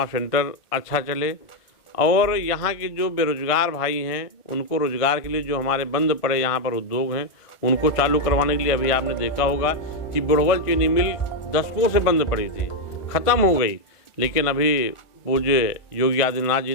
सेंटर अच्छा चले, और यहाँ के जो बेरोजगार भाई हैं उनको रोजगार के लिए जो हमारे बंद पड़े यहाँ पर उद्योग हैं उनको चालू करवाने के लिए, अभी आपने देखा होगा कि बुढ़वल चीनी मिल दशकों से बंद पड़ी थी, ख़त्म हो गई, लेकिन अभी पूज्य योगी आदित्यनाथ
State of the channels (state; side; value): late; right; 1.5 ms